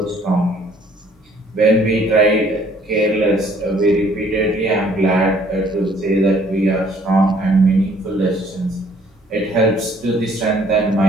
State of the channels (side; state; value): both; normal; correlation 0.61